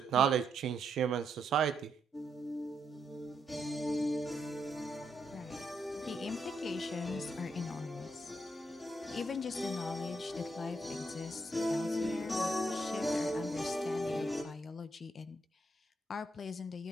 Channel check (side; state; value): both; normal; correlation 0.79